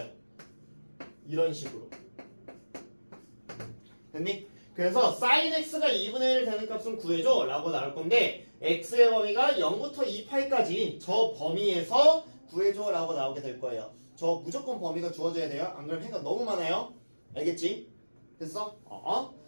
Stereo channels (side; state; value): both; inverted; correlation -1.00